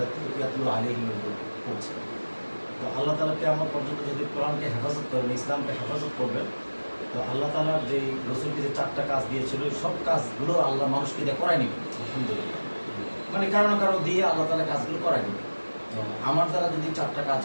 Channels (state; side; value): inverted; both; correlation -1.00